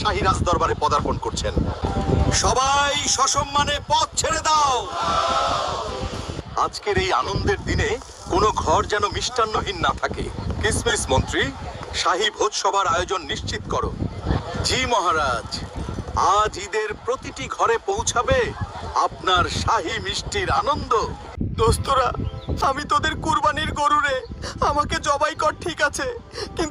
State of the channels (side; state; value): both; identical; correlation 1.00